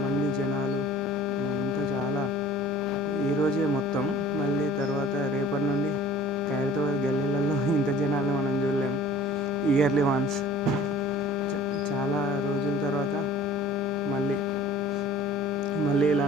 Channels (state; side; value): normal; both; correlation 0.47